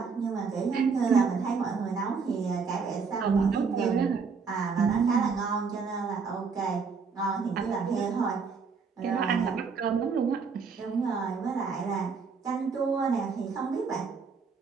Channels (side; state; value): left; quieter; 5.3 dB